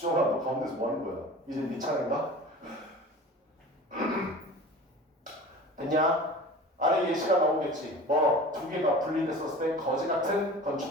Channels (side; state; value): both; normal; correlation 0.38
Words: 너 가운데서 뭐 하는 거야? 이제 네 차례인가? 됐냐? 아래 예시가 나오겠지. 뭐, 두 개가 분리됐었을 때 거지 같은